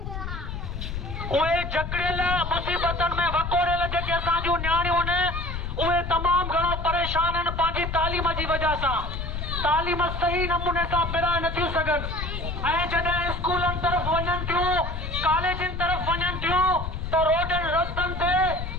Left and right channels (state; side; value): noise; left; rumble, 5 dB below the sound